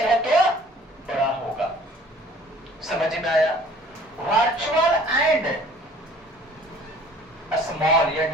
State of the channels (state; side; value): normal; both; correlation 0.52